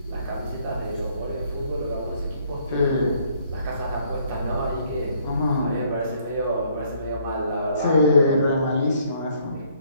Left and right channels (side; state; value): both; inverted; correlation -0.65